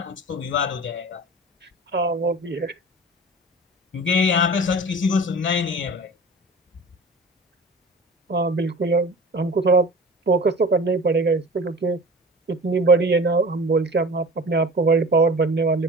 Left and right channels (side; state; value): both; normal; correlation 0.39